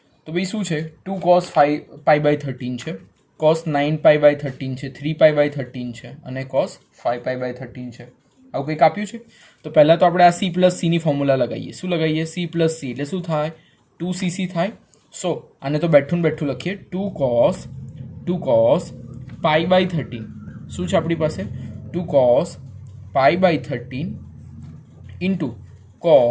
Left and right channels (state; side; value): identical; both; correlation 1.00